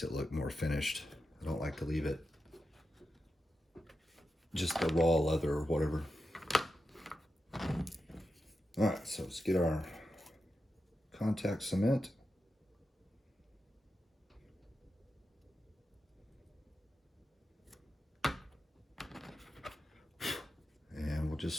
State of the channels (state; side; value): normal; both; correlation 0.89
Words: it look more finished. I don't like to leave it just the raw leather or whatever. All right, so let's get our contact cement. And we'll just